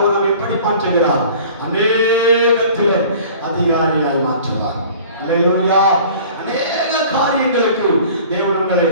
நம்மை எப்படி மாற்றுகிறார்? அநேகத்திலே அதிகாரியாய் மாற்றுவார். அல்லேலூயா. அநேக காரியங்களுக்கு தேவன் உங்களை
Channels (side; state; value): both; inverted; correlation -0.46